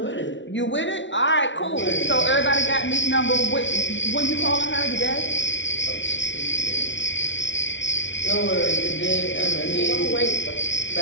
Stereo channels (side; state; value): right; late; 0.54 ms